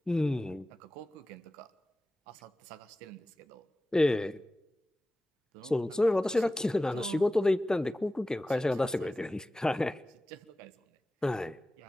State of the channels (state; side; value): normal; both; correlation 0.96